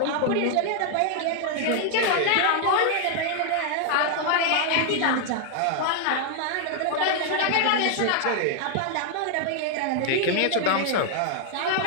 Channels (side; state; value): both; different; correlation 0.00